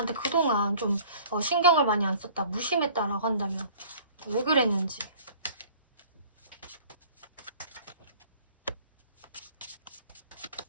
그동안 좀 신경을 많이 안 썼다, 무심했다라고 한다면 왜 그랬는지.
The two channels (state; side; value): inverted; both; correlation -0.50